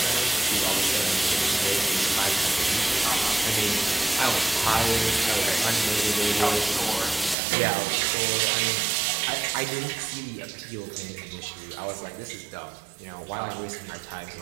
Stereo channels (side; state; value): left; drops out; at 7.4 s